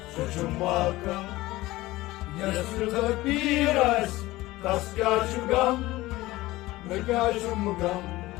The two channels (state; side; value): quieter; right; 18.4 dB